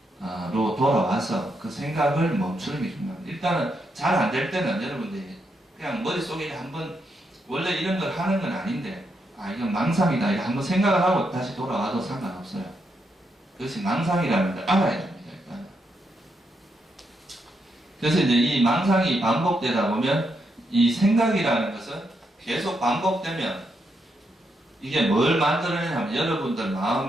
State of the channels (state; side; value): normal; both; correlation 0.81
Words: 돌아와서 그 생각을 멈추는 게 중요합니다. 일단은 잘 안 될 때는 여러분들이 그냥 머릿속에 한번 원래 이런 걸 하는 건 아닌데, 이건 망상이다 이렇게 한번 생각을 하고 다시 돌아와도 상관없어요. 그것이 망상이라는 걸 알아야 됩니다. 일단. 그래서 이제 이 망상이 반복되다 보면 이 생각이라는 것은 계속 반복되면 이게 뭘 만들어내냐면 여러분들